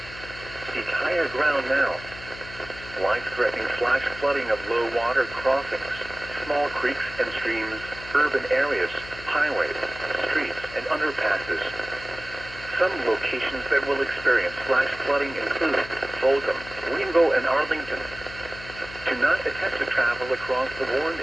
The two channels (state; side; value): noise; left; hum, 15 dB below the sound